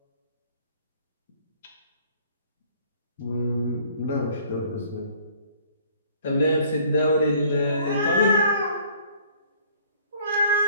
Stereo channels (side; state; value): both; inverted; correlation -0.56